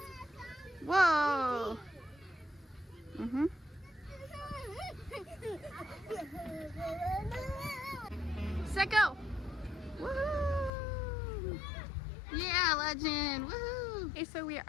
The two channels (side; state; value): right; drops out; at 10.7 s